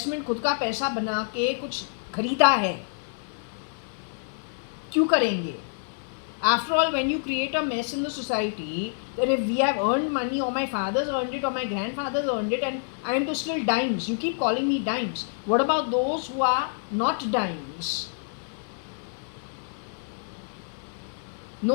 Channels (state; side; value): silent; right; 60 dB below the other